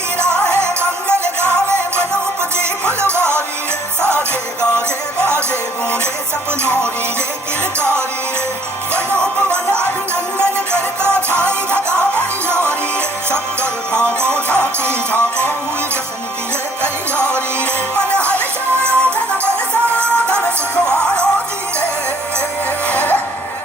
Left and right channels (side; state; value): both; normal; correlation 0.62